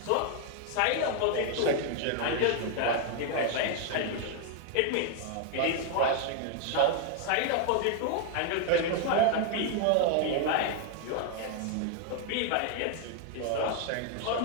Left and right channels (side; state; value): both; different; correlation 0.00